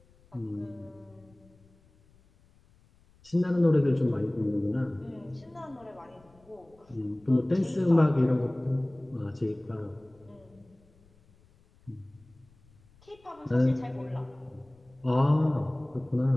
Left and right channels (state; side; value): noise; left; rumble, 30 dB below the sound